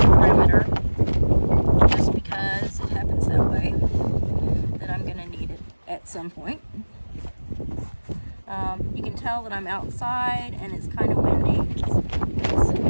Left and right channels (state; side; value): inverted; both; correlation -1.00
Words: perimeter, just because it happens that way, that I'm going to need it at some point. You can tell that I'm outside and it's kind of windy. It's